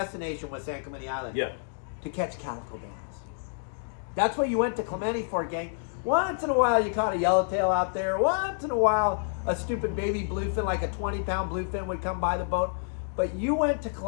was, San Clemente Island. Yeah. To catch calico bass. That's what you went to Clementi for, gang. Once in a while you caught a yellowtail out there. Once in a while a stupid baby bluefin, like a 20-pound bluefin, would come by the boat. But you went to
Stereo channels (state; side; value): silent; right; digital silence